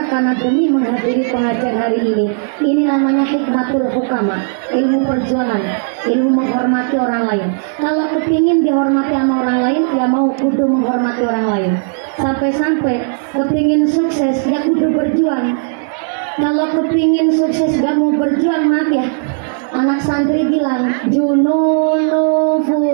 karena demi menghadiri pengajian hari ini. Ini namanya hikmatul hukama, ilmu perjuangan, ilmu menghormati orang lain. Kalau kepingin dihormati sama orang lain, ya mau kudu menghormati orang lain. Sampai-sampai kepingin sukses, ya kudu berjuang. Kalau kepingin sukses gak mau berjuang, maaf ya, anak santri bilang jununu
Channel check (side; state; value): left; silent; 70 dB below the other